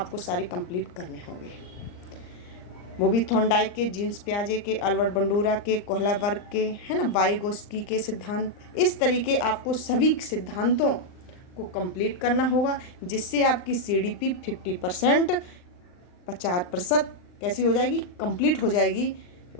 सारे कंप्लीट करने होंगे। वो भी थॉर्नडाइक के, जीन्स प्याजे के, अल्बर्ट बंडूरा के, कोहलबर्ग के, है ना, वाइगोत्स्की के सिद्धांत। इस तरीके आपको सभी सिद्धांतों को कंप्लीट करना होगा, जिससे आपकी सीडीपी 50%, 50% कैसी हो जाएगी, कंप्लीट हो जाएगी।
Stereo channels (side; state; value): right; late; 39 ms